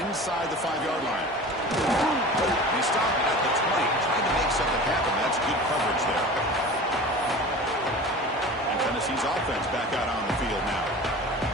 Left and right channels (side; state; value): both; normal; correlation 0.37